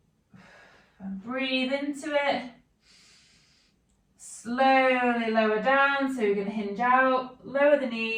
and breathe into it. Slowly lower down, so you're going to hinge out, lower the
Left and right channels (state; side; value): identical; both; correlation 1.00